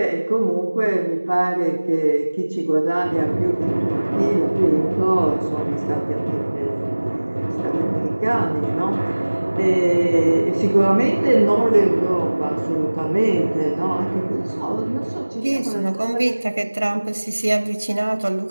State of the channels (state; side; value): inverted; both; correlation -1.00